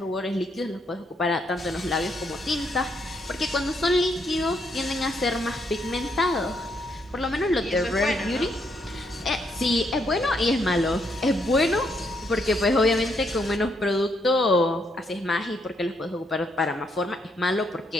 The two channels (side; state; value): both; normal; correlation 0.75